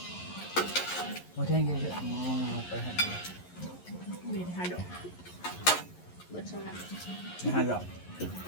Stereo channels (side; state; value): right; late; 11 ms